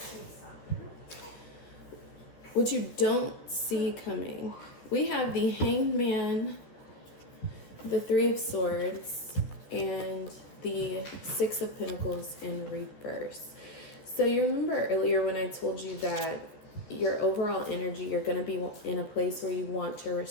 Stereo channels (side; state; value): right; late; 13 ms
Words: what you don't see coming, we have the Hanged Man, the Three of Swords, and the Six of Pentacles in reverse. So you remember earlier when I told you that your overall energy, you're going to be in a place where you want to